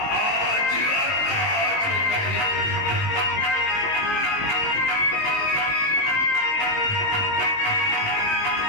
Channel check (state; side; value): late; right; 19 ms